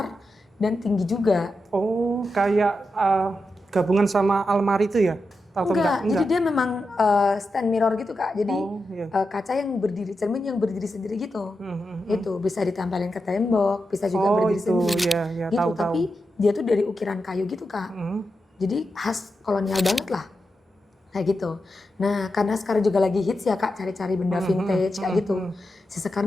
dan tinggi juga. Oh, kayak gabungan sama almari itu ya? Atau Enggak, jadi dia memang stand mirror gitu Kak. Jadi Oh, iya. kaca yang berdiri, cermin yang berdiri sendiri gitu. Hmm. Itu bisa ditempelin ke tembok, bisa juga Oh, berdiri itu sendiri. ya, Gitu, tahu. tapi dia tuh dari ukiran kayu gitu Kak. Jadi khas kolonial banget lah. Kayak gitu. Nah, karena sekarang juga lagi hits ya Kak, cari-cari benda vintage kayak gitu. Si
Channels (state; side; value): normal; both; correlation 0.88